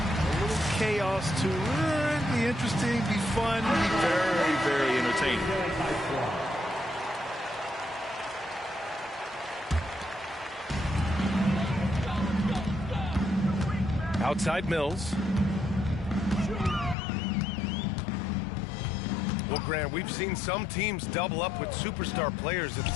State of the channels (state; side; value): drops out; right; at 16.9 s